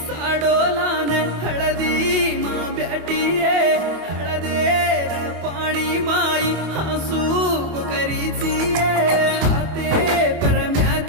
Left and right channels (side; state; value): left; late; 25 ms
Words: साडोलान हळदी मा ब्याटिये हळदेर पाणी माई हसू करीचिये हाते